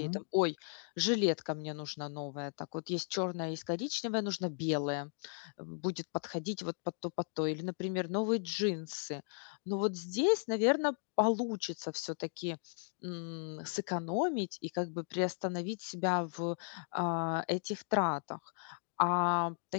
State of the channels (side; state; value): right; silent; 54 dB below the other